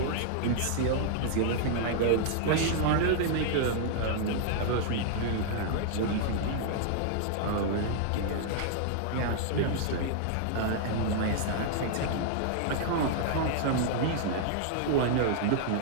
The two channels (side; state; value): both; different; correlation -0.01